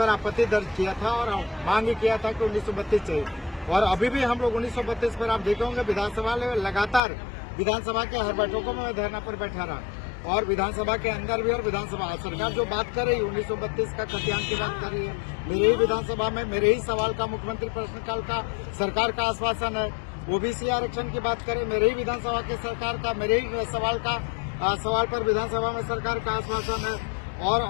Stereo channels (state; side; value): drops out; right; at 7.0 s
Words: आपत्ति दर्ज किया था और मांग किया था कि 1932 चाहिए। और अभी भी हम लोग 1932 पर, आप देखे होंगे, विधानसभा में लगातार विधानसभा के हर बैठकों में मैं धरना पर बैठा रहा और विधानसभा के अंदर भी। और विधानसभा सरकार जो बात कर रही है 1932 का खतियान की बात कर रही है, मेरे ही विधानसभा में मेरे ही सवाल का, मुख्यमंत्री प्रश्नकाल का सरकार का आश्वासन है। OBC आरक्षण की बात करें, मेरे ही विधानसभा के सरकार का, मेरे ही सवाल पर विधानसभा में सरकार का आश्वासन है।